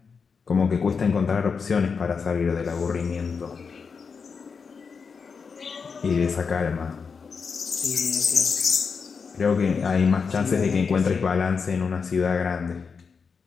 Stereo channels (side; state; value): right; quieter; 5.5 dB